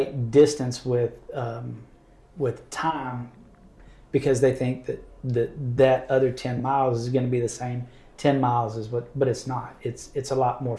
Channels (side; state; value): both; identical; correlation 1.00